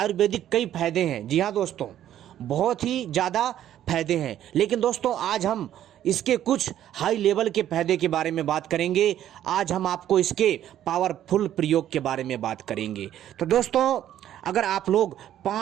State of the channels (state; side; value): quieter; left; 11.5 dB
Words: कई फायदे हैं। जी हाँ दोस्तों, बहुत ही ज़्यादा फायदे हैं, लेकिन दोस्तों आज हम इसके कुछ हाई लेवल के फायदे के बारे में बात करेंगे। आज हम आपको इसके पावरफुल प्रयोग के बारे में बात करेंगे। तो दोस्तों अगर आप लोग